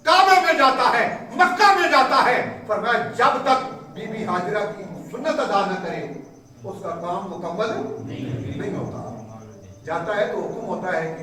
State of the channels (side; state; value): both; identical; correlation 1.00